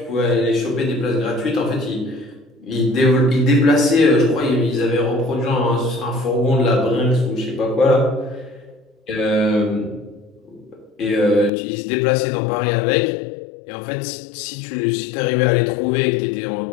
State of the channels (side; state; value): right; drops out; at 11.5 s